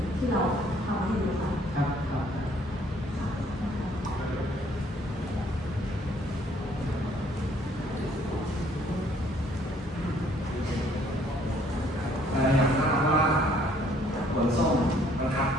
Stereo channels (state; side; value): normal; both; correlation 0.62